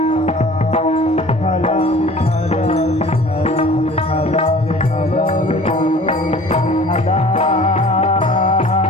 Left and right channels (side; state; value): both; normal; correlation 0.47